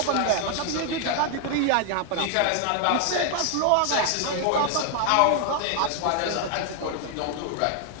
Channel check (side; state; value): both; different; correlation 0.01